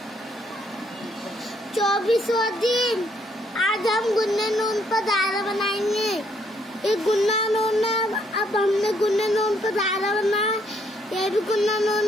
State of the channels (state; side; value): normal; both; correlation 0.70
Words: 24वां दिन। आज हम गुन्ने नून पर दायरा बनाएंगे। ये गुन्ना नून है, अब हमने गुन्ने नून पर दायरा बनाया। ये भी गुन्ना